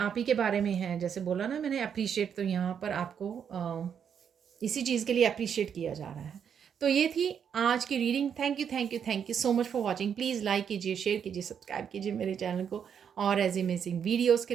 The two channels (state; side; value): quieter; left; 7.8 dB